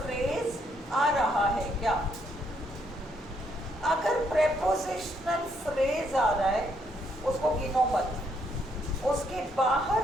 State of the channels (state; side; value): normal; both; correlation 0.73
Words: आ रहा है क्या। अगर प्रेपोजिशनल फ्रेज आ रहा है उसको गिनो मत, उसके